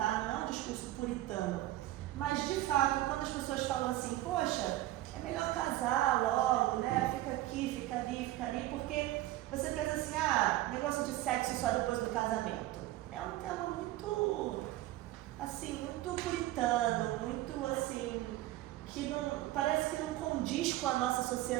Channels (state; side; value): quieter; left; 15.8 dB